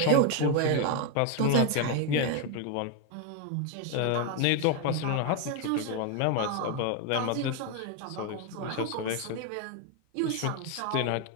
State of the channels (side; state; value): both; different; correlation 0.01